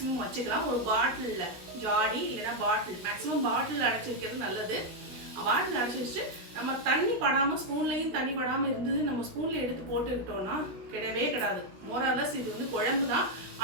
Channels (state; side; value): late; left; 16 ms